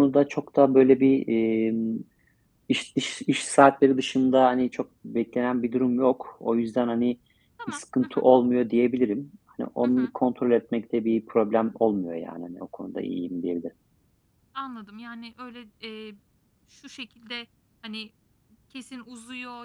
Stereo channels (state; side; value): identical; both; correlation 1.00